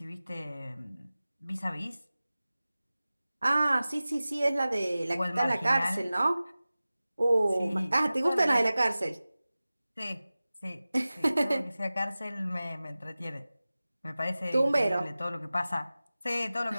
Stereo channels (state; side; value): inverted; both; correlation -0.97